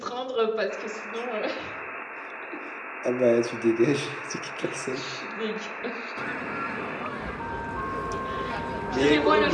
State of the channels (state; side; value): identical; both; correlation 1.00